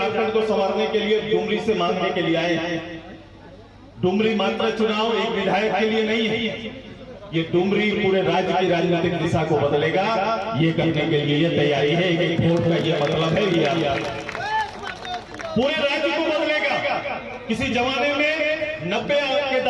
को संवारने के लिए डुमरी से मांगने के लिए आए हैं। डुमरी मात्र चुनाव एक विधायक के लिए नहीं है, ये डुमरी पूरे राज्य की राजनीतिक दिशा को बदलेगा। ये करने के लिए ये तैयारी है। एक वोट का ये मतलब है, ये पूरे राज्य को बदलेगा। किसी जमाने में 90 के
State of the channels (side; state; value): both; identical; correlation 1.00